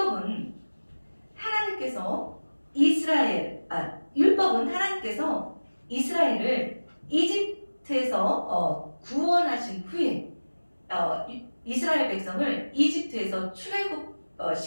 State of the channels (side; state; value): both; inverted; correlation -1.00